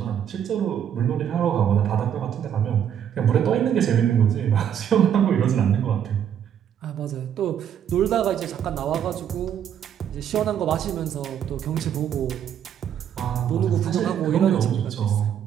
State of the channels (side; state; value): left; quieter; 9.2 dB